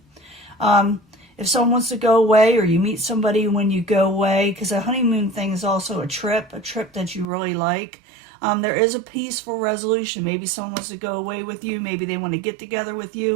If someone wants to go away, or you meet somebody when you go away, because a honeymoon thing is also a trip that you really like. There is a peaceful resolution. Maybe someone wants to go away with you. Maybe they want to get together with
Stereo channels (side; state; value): left; drops out; at 7.2 s